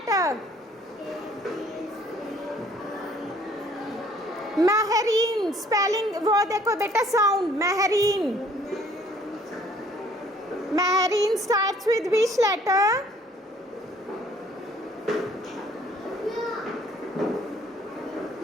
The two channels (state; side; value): normal; both; correlation 0.59